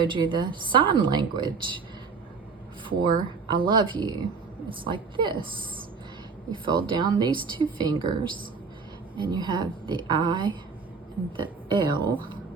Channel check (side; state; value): left; quieter; 5.0 dB